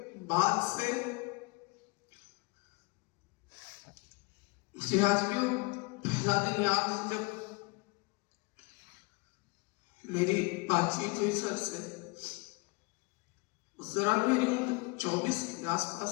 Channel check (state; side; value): quieter; right; 28.4 dB